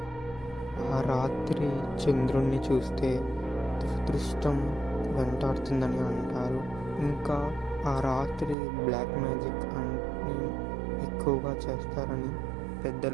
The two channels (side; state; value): left; drops out; at 8.6 s